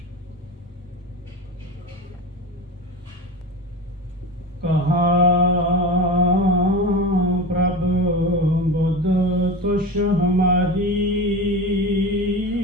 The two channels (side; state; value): both; normal; correlation 0.27